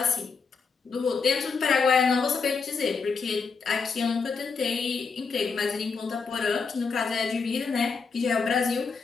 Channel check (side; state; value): right; quieter; 5.1 dB